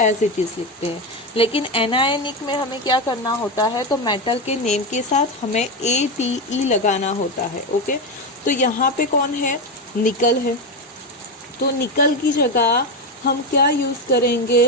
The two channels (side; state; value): both; normal; correlation 0.13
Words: एज इट इज लिखते हैं. लेकिन एनायनिक में हमें क्या करना होता है, तो मेटल के नेम के साथ हमें ATE लगाना होता है। ओके, तो यहाँ पे कौन है, निकल है, तो निकल की जगह हम क्या यूज़